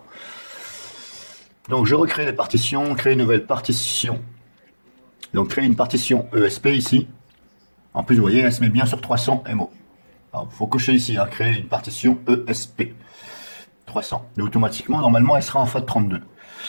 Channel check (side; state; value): both; inverted; correlation -1.00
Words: Donc je recrée les partitions, créer une nouvelle partition. Donc créer une partition ESP ici. En plus, vous voyez, elle se met bien sur 300 MO. Il faut cocher ici, hein, créer une partition ESP 300. Et automatiquement, normalement, elle sera en FAT32.